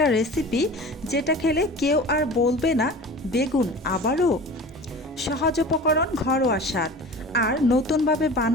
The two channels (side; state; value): both; normal; correlation 0.38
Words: রেসিপি যেটা খেলে কেউ আর বলবে না বেগুন আবারও। সহজ উপকরণ, ঘরোয়া স্বাদ আর নতুনভাবে